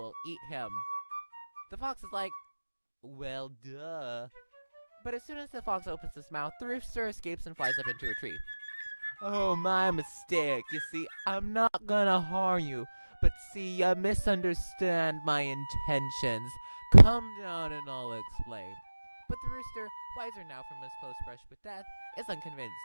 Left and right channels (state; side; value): inverted; both; correlation -1.00